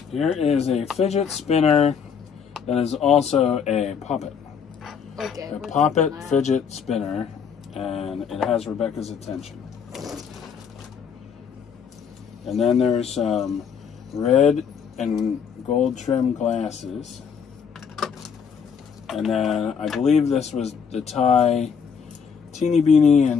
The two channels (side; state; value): right; quieter; 6.8 dB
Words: Here is a fidget spinner that is also a poppet. Okay. A poppet fidget spinner, and it has Rebecca's attention. And then there's some red and gold trim glasses. And then I believe this was the Thai Teeny Beanie,